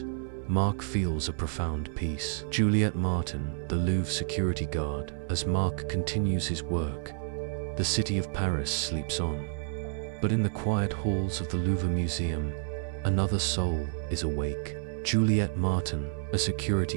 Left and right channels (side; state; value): left; silent; 58 dB below the other